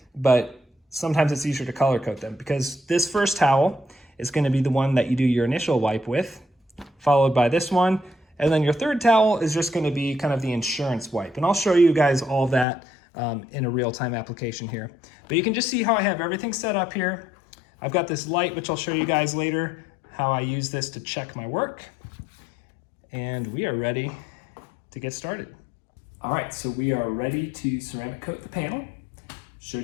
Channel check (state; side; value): drops out; right; at 12.7 s